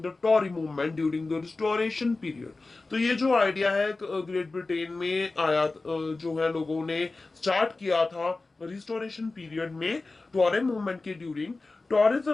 the Tory movement during the Restoration period. तो ये जो आइडिया है ग्रेट ब्रिटेन में आया, जो है लोगों ने स्टार्ट किया था रिस्टोरेशन पीरियड में टॉरे मूवमेंट के during.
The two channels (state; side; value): quieter; right; 3.5 dB